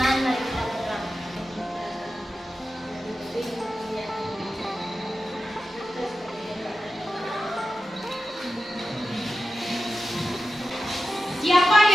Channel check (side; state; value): both; normal; correlation 0.92